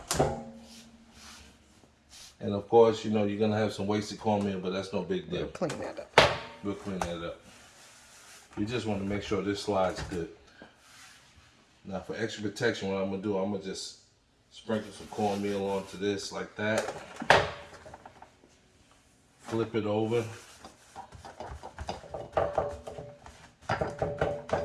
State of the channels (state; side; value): identical; both; correlation 1.00